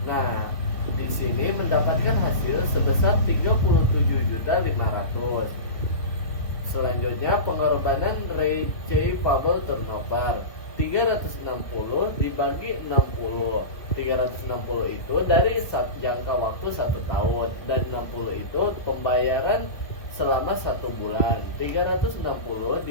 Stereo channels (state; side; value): late; right; 1.8 ms